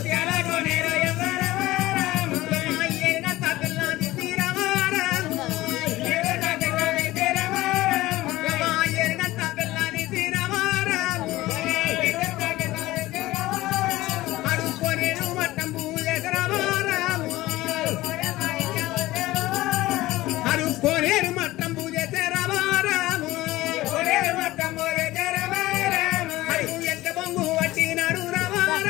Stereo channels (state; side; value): quieter; right; 17.6 dB